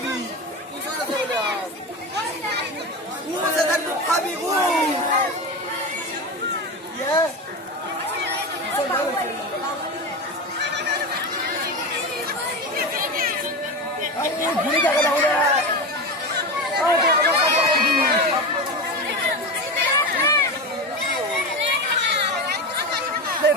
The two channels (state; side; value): normal; both; correlation 0.21